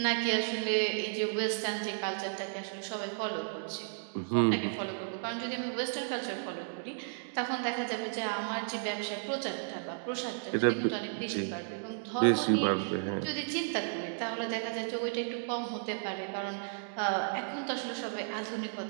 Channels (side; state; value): left; silent; digital silence